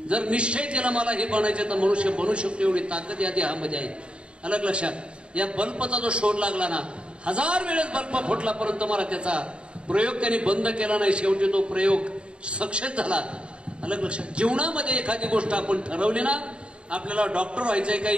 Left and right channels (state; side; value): late; left; 0.055 ms